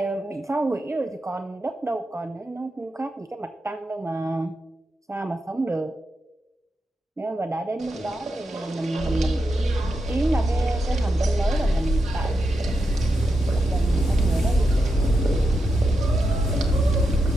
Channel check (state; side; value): normal; both; correlation 0.86